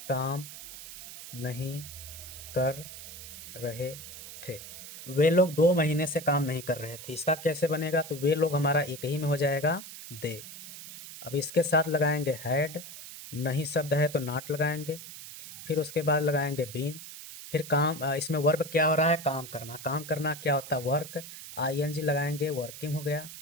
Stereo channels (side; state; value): right; noise; hiss, 13 dB below the sound